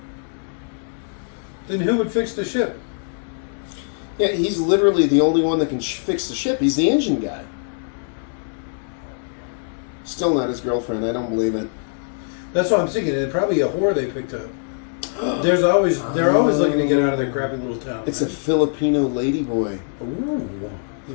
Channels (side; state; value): right; silent; digital silence